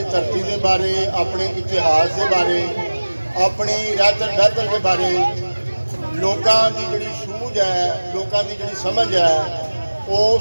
धरती के बारे, अपने इतिहास के बारे, अपनी रहतर बहतर के बारे लोगों की जी सूझ है, लोगों की जी समझ है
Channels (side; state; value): both; inverted; correlation -1.00